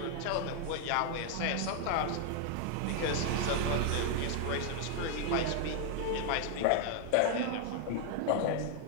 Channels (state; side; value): different; both; correlation 0.00